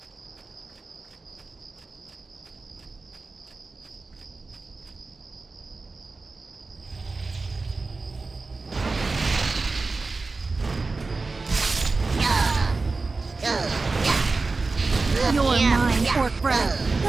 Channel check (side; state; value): left; quieter; 3.8 dB